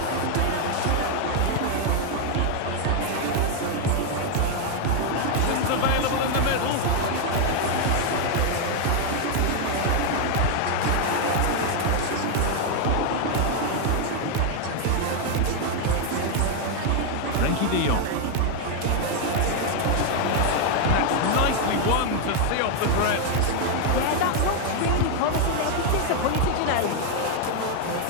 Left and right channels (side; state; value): both; different; correlation 0.00